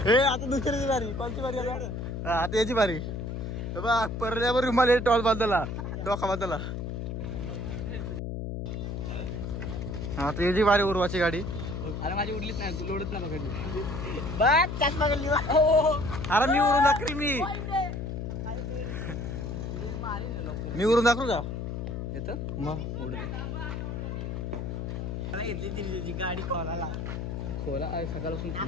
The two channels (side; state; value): left; noise; hum, 4 dB below the sound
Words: हे आता दुसऱ्याची बारी. कोणती बारी आता याची बारी. बा परल्यावर रुमाल टॉल बांधला डोका बांधला. आता याची बारी उर्वाची गाडी. अरे माझी उडलीच नाही लोडच नाही पकडली. अरे मी उरून दाखवी मी उरून दाखवू का येतं मग उडत घेतली दिल्लीची गाडी खोलाला. खोला सकाळपासून